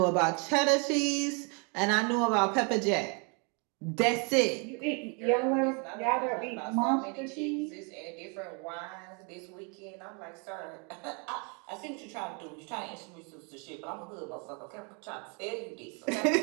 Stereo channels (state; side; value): quieter; left; 34.6 dB